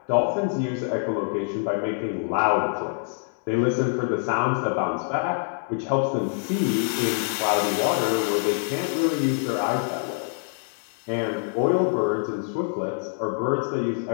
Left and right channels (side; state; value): right; silent; digital silence